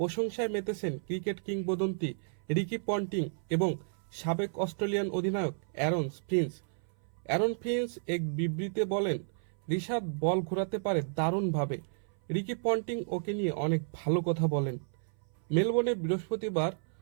মেতেছেন ক্রিকেট কিংবদন্তি রিকি পন্টিং এবং সাবেক অস্ট্রেলিয়ান অধিনায়ক অ্যারন ফিঞ্চ এক বিবৃতিতে বলেন, রিশাদ বল ঘোরাতে পারে দারুণভাবে। রিকি পন্টিং ওকে নিয়ে অনেক ভালো কথা বলেন। মেলবোর্নে বৃহস্পতিবার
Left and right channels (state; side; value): silent; left; 56 dB below the other